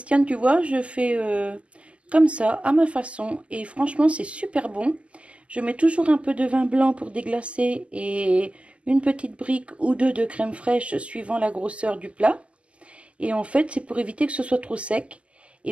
tu vois, je fais comme ça, à ma façon. Et franchement, c'est super bon. Je mets toujours un peu de vin blanc pour déglacer et une petite brique ou deux de crème fraîche suivant la grosseur du plat. Et en fait, c'est pour éviter que ce soit trop sec. Et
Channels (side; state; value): left; late; 0.058 ms